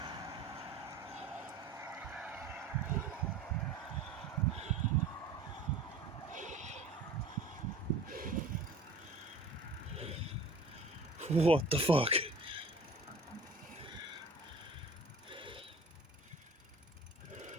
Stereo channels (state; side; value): quieter; left; 3.1 dB